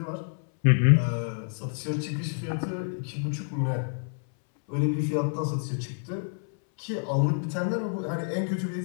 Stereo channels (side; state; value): right; silent; 59 dB below the other